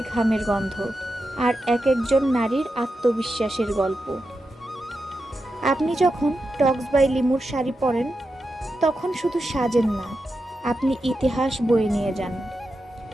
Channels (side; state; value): both; normal; correlation 0.89